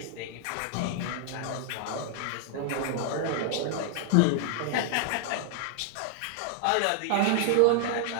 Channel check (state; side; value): different; both; correlation 0.00